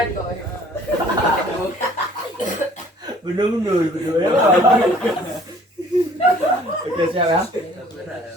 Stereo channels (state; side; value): normal; both; correlation 0.54